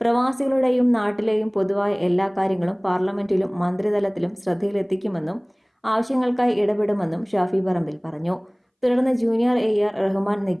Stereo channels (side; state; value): both; identical; correlation 1.00